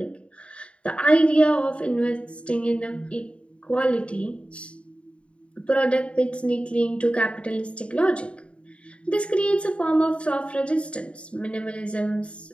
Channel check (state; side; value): late; right; 0.059 ms